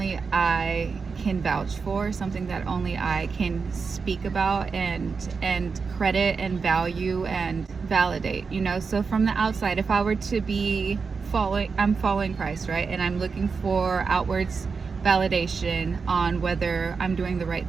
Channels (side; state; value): left; quieter; 5.1 dB